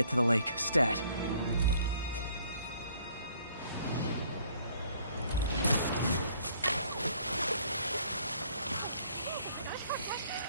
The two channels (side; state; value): both; inverted; correlation -0.62